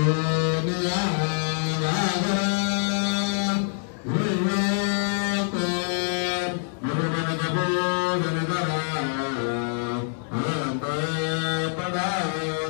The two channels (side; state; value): right; silent; digital silence